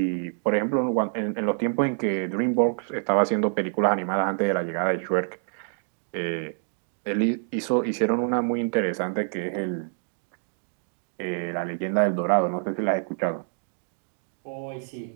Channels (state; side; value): silent; left; digital silence